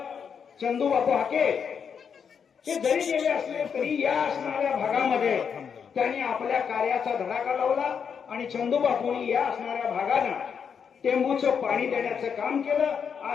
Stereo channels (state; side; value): quieter; right; 6.9 dB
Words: चंदूबापू हाके हे जरी गेले असले तरी या असणाऱ्या भागामध्ये त्यांनी आपल्या कार्याचा धडाका लावला. आणि चंदूबापूंनी या असणाऱ्या भागांना टेंबूचं पाणी देण्याचं काम केलं.